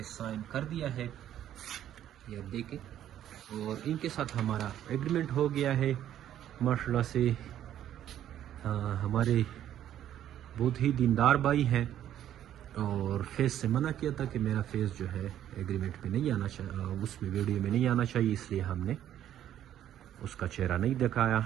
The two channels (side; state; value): left; quieter; 11.2 dB